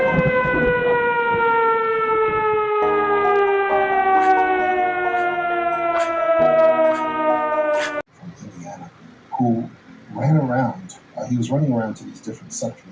who ran around. He was running around to these different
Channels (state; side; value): identical; both; correlation 1.00